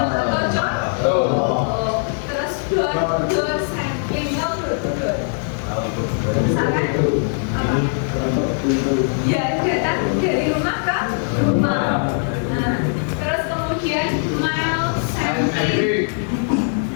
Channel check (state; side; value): silent; right; 56 dB below the other